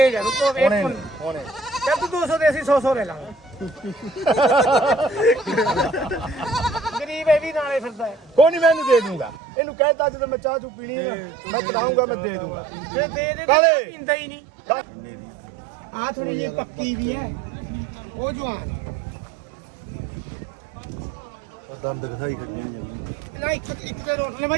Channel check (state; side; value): drops out; left; at 9.3 s